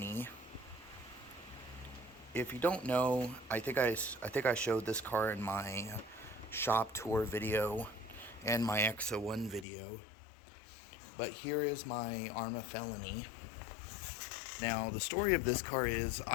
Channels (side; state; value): right; drops out; at 9.7 s